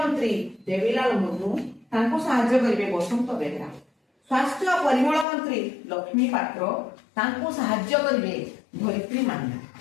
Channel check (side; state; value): right; drops out; at 5.2 s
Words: देवीलाल मुर्मू ताकु सहाय्य करिवे बसंत बेहेरा। स्वास्थ्य और परिमल मंत्री लक्ष्मी पात्र ताकु सहाय्य करिवे धरित्री मान्ना।